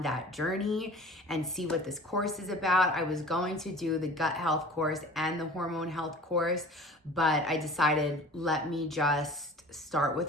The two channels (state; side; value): normal; both; correlation 0.43